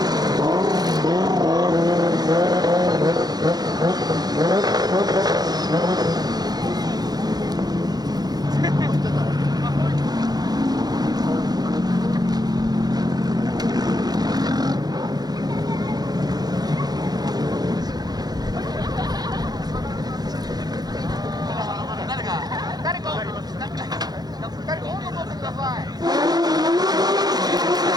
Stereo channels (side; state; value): left; late; 0.19 ms